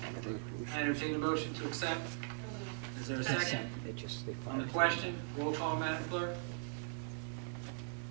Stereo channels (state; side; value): silent; left; digital silence